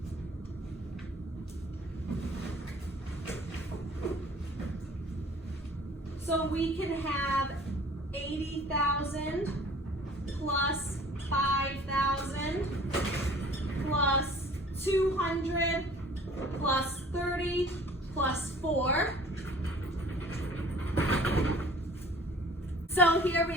So we can have 80,000 plus 5,000 plus 200 plus 30 plus 4. So here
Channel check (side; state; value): both; normal; correlation 0.49